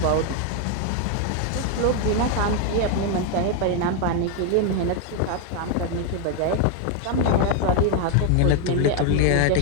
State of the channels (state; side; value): different; both; correlation 0.00